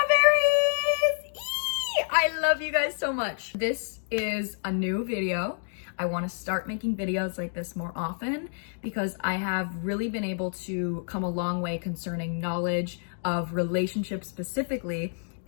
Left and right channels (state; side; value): silent; right; digital silence